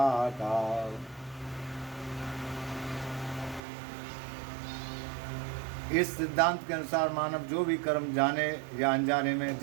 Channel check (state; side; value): drops out; left; at 3.6 s